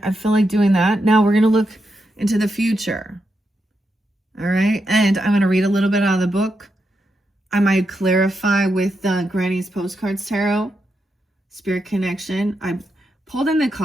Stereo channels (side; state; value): both; normal; correlation 0.84